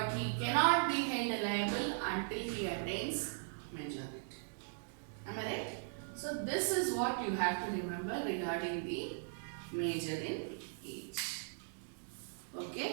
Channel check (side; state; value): left; silent; digital silence